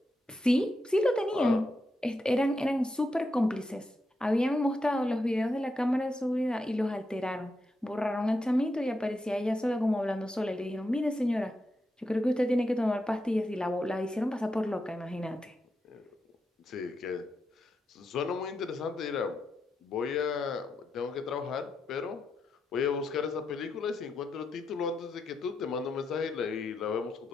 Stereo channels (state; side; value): normal; both; correlation 0.86